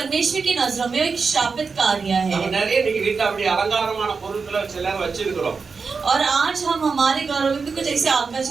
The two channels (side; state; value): left; quieter; 4.9 dB